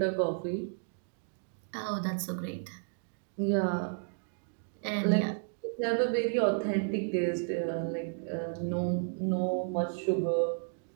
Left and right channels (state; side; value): silent; left; digital silence